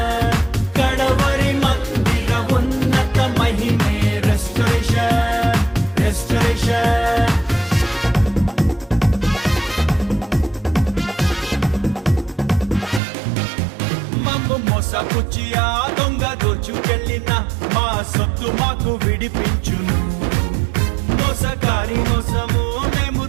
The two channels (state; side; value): drops out; left; at 13.0 s